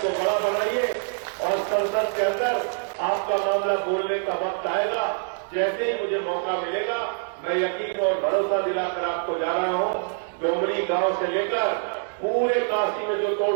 बड़ा बनाइए और संसद के अंदर आपका मामला बोलने का वक्त आएगा। जैसे ही मुझे मौका मिलेगा, मैं यकीन और भरोसा दिलाकर आपको जा रहा हूं, डोमरी गांव से लेकर पूरे काशी में जो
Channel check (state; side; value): silent; left; digital silence